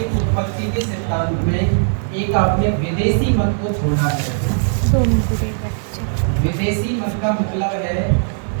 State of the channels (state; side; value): silent; left; 67 dB below the other